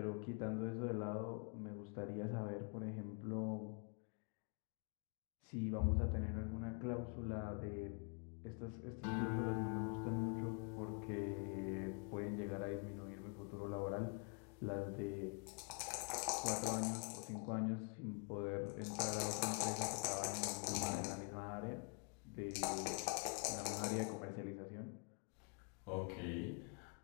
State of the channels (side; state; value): right; quieter; 39.6 dB